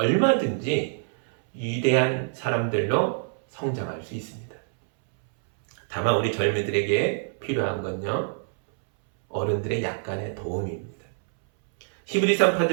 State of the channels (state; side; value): silent; left; 61 dB below the other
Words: 위대한 사람들로 성장할 수 있습니다. 다만 우리 젊은이들에게 필요한 건요, 어른들의 약간의 도움입니다. 히브리